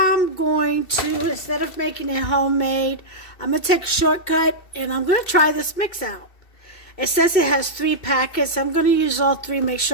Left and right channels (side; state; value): right; late; 2.7 ms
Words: going to, instead of making it homemade, I'm going to take a shortcut and I'm going to try this mix out. It says it has 3 packets. I'm going to use all 3, make